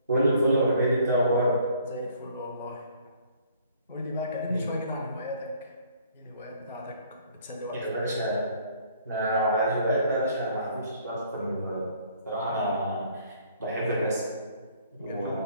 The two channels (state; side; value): inverted; both; correlation -0.59